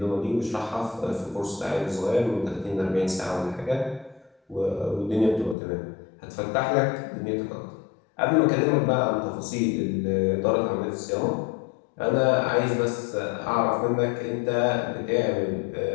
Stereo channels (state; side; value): drops out; right; at 5.6 s